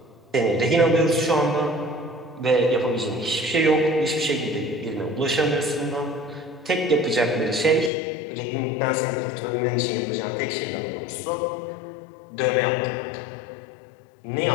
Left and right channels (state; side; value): drops out; right; at 7.9 s